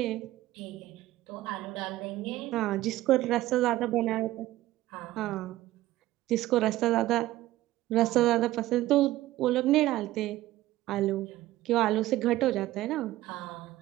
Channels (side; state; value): left; quieter; 15.9 dB